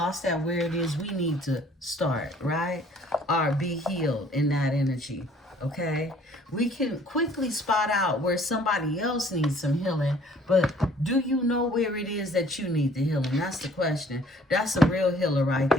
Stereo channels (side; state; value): both; normal; correlation 0.56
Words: at where it is we need to start, right? Or be healed in that energy, okay? We can quickly spot out where somebody else needs some healing, but do you know where it is that you need the healing? That's the question. That's a real healer right